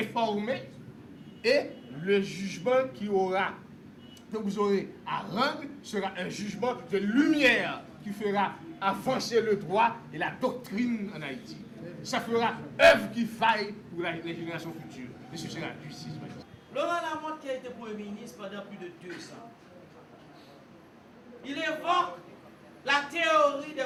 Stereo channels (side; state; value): both; identical; correlation 1.00